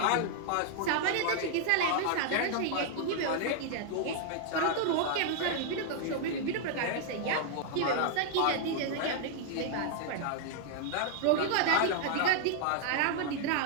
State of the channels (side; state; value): both; different; correlation 0.00